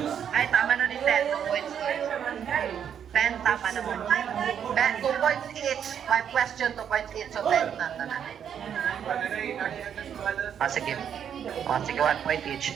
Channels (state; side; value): quieter; left; 8.5 dB